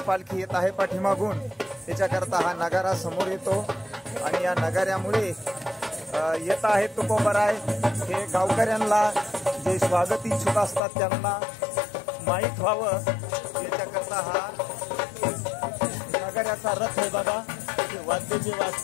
पालखी येत आहे पाठीमागून, त्याच्याकरता हा नगारा समोर येतो आणि या नगाऱ्यामुळे येत आहे तुकोबाराय हे गावकऱ्यांना जे स्वागत इच्छुक असतात त्यांना माहीत व्हावं याच्याकरता हा नगाऱ्याचा रथ आहे. बघा ते वाद्य जे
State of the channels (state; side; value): drops out; right; at 10.8 s